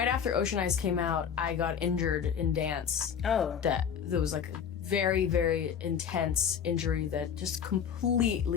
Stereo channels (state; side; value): quieter; right; 7.7 dB